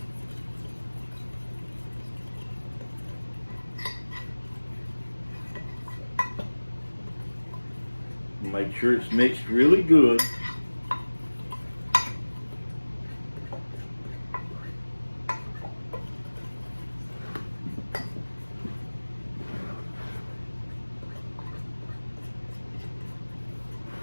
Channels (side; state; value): both; inverted; correlation -1.00